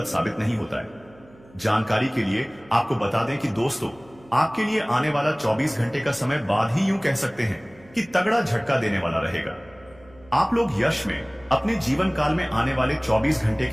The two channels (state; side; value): noise; right; hum, 25 dB below the sound